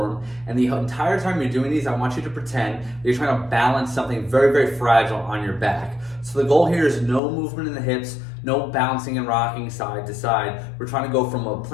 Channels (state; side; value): drops out; right; at 7.2 s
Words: and the entire time you're doing these, I want you to pretend that you're trying to balance something very, very fragile on your back. So the goal here is no movement in the hips, no bouncing and rocking side to side. We're trying to go from a